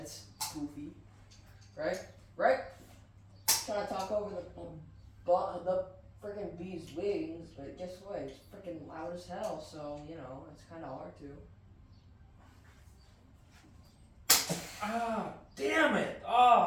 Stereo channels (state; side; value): identical; both; correlation 1.00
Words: goofy. Right? Right? Trying to talk over the freaking bee's wings, but guess what? It's freaking loud as hell, so, you know, it's kind of hard to. Ah, damn it!